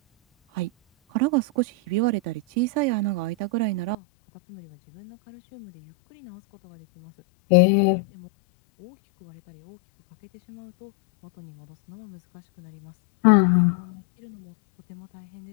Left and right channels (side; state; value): right; drops out; at 4.0 s